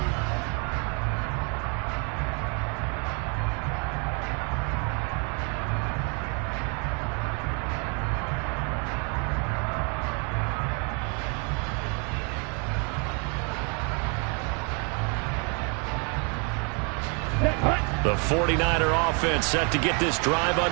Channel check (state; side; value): quieter; left; 35.6 dB